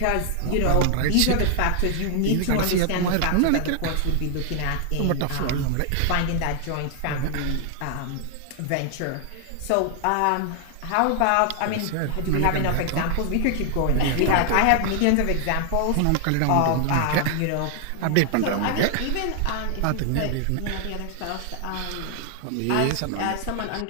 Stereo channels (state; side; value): different; both; correlation 0.00